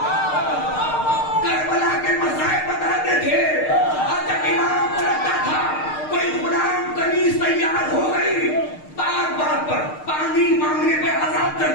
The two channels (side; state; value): right; late; 6.5 ms